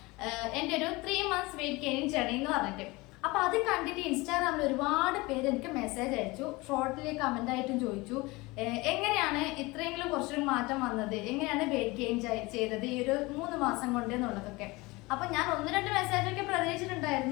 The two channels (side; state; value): right; quieter; 23.0 dB